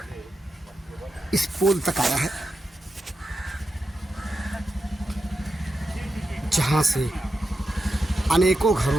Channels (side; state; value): both; normal; correlation 0.88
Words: इस पोल तक आया है, जहां से अनेकों